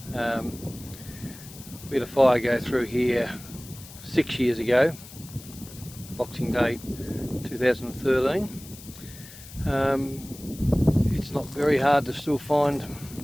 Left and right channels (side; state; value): left; noise; hiss, 17 dB below the sound